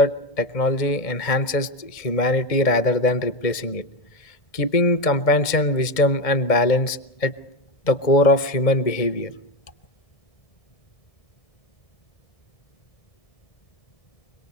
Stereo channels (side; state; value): right; late; 2.1 ms